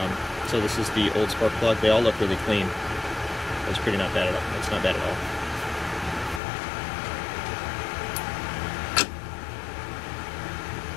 So this is the old spark plug. They all look really clean. It's pretty not bad at all. It's not bad at all.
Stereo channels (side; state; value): right; drops out; at 6.4 s